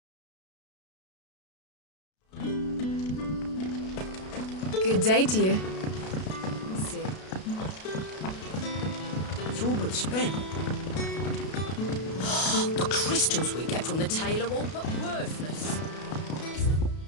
Good day to you. Let's see. It's all but spent. The crystals we get from the tail are all but worthless.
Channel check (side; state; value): right; late; 32 ms